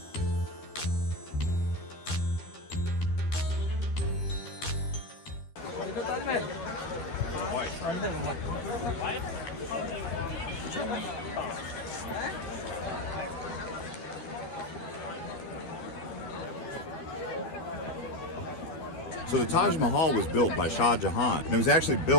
So the Taj Mahal was built by Shah Jahan, and it was actually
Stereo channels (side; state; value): right; late; 12 ms